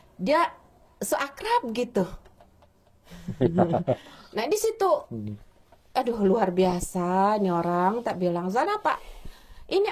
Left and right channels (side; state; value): both; identical; correlation 1.00